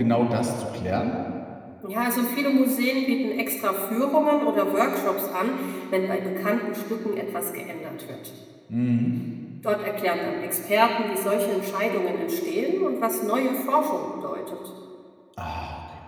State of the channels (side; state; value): both; identical; correlation 1.00